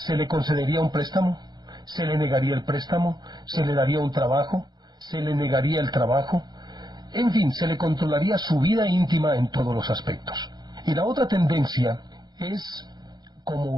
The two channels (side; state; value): left; late; 0.20 ms